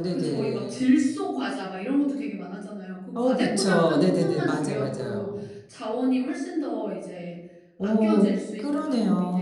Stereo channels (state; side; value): identical; both; correlation 1.00